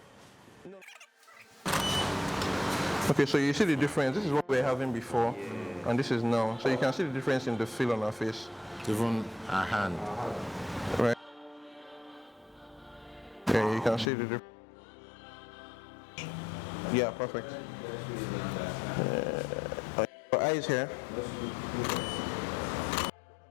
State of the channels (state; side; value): drops out; right; at 14.1 s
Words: No. Okay, so you see the difference. This is what we were having before, and this is now. So you can see the difference in the feel on our face. Even a hand. Right. Yeah, you can see the difference. Yeah, perfect. Your eyes here.